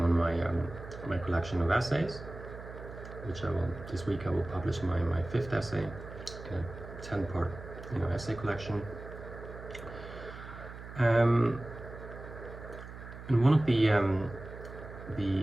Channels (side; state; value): right; noise; hum, 13 dB below the sound